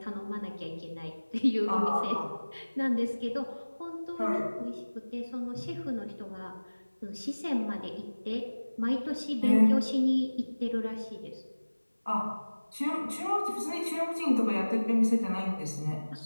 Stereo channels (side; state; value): both; inverted; correlation -1.00